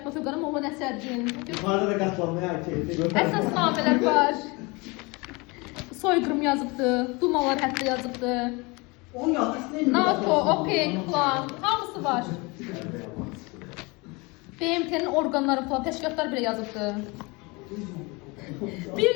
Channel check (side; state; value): right; quieter; 26.5 dB